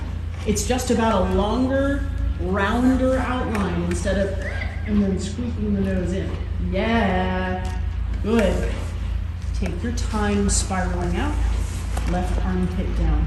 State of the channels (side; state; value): both; identical; correlation 1.00